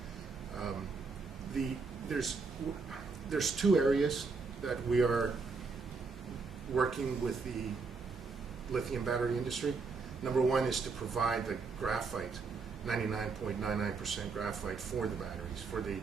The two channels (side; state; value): left; quieter; 4.5 dB